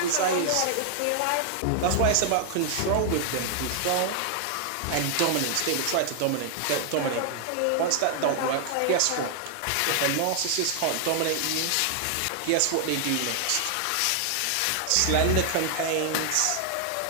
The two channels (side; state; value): both; different; correlation 0.00